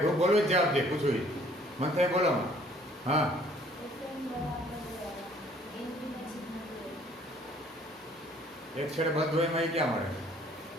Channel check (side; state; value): both; normal; correlation 0.58